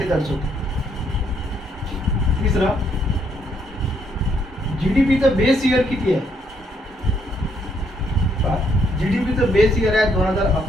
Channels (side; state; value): both; normal; correlation 0.71